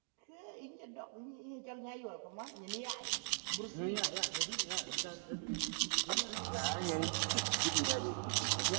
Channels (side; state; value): left; silent; digital silence